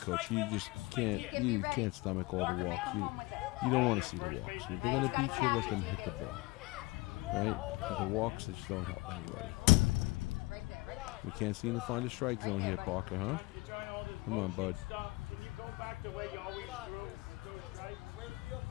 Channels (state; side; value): quieter; right; 22.7 dB